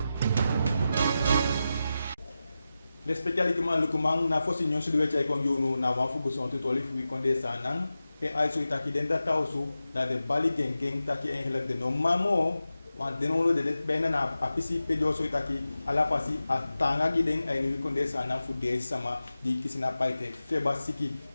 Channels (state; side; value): inverted; both; correlation -0.92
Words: l'especialement le comment na fosi nyon sudu wechai kon yunu na wan fu guson tutoli fu konde sanang e aiso itaki den data osu da de bali geng taki en de no mamo wan denolo de bena na apisi pedio so itaki ala fasi atanga giden ay ni konde sana fu de sama di kisina paite feba siki